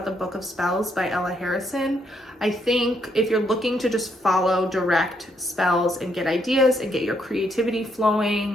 the Book of Spells by Ella Harrison. I think if you're looking to just follow direct spells and get ideas and get your creativity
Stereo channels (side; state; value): both; normal; correlation 0.74